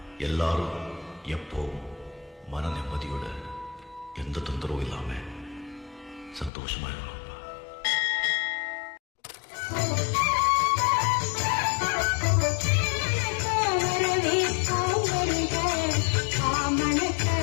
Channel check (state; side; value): drops out; right; at 6.5 s